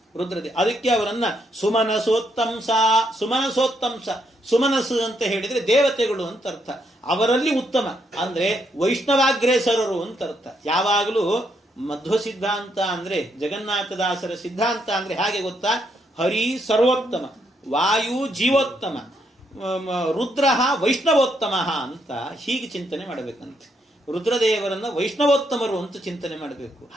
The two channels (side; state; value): both; normal; correlation 0.76